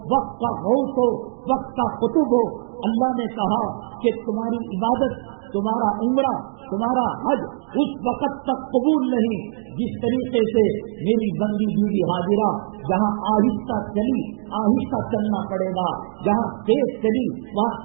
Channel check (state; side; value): silent; left; digital silence